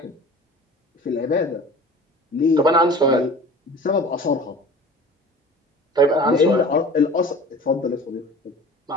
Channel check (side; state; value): both; normal; correlation 0.41